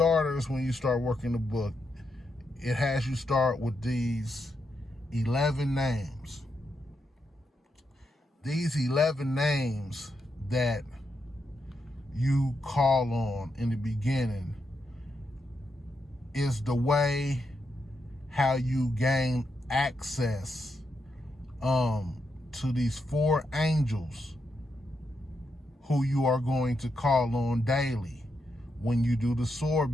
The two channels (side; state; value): both; normal; correlation 0.83